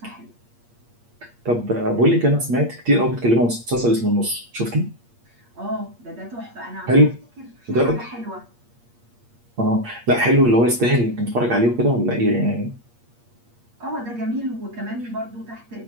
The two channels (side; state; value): left; late; 8.5 ms